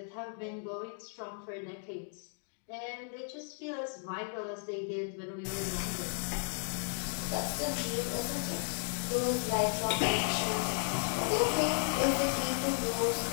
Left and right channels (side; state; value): right; silent; 55 dB below the other